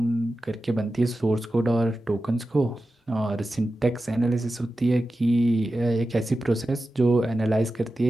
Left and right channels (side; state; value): both; normal; correlation 0.93